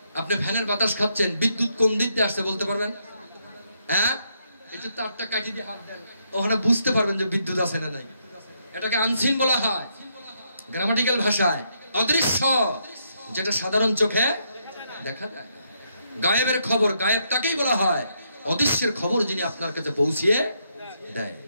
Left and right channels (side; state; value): both; inverted; correlation -0.77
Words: আপনি ফ্যানের বাতাস খাচ্ছেন, বিদ্যুৎ কোন দিক দিয়ে আসছে বলতে পারবেন? হ্যাঁ, একটু তারটা কাটি দিয়ে হাত দেন, ওখানে বুঝতে পারবেন যে বিদ্যুৎ আছে না নাই। এটাকে আনসিন বলা হয় গ্রামাটিক্যাল ভাষায়। অদৃশ্য, যেটা সাধারণ চোখে দেখা যায় না। গায়েবের খবর, গায়েব তাকেই বলা হয় অদৃশ্যের খবর যিনি আপনার কাছে পৌঁছিয়ে দেয়।